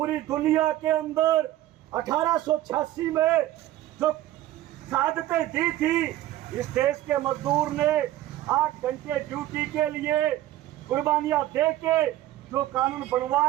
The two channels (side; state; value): left; quieter; 14.3 dB